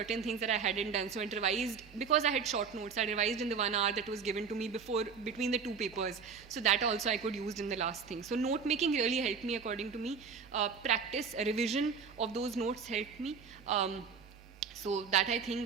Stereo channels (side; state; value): left; quieter; 5.9 dB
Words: things that I hadn't done. So I revised, because I had short notes, I revised in the 1 hour that was given to me between the two papers. So that also I could use in the last thing. So note making really helped me, according to me. Practice, revision of those notes helped me. So that, I